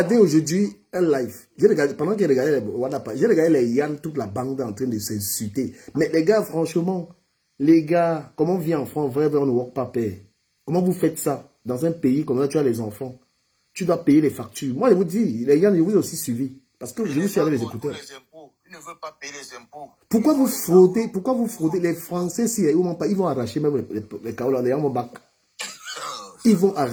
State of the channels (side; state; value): both; identical; correlation 1.00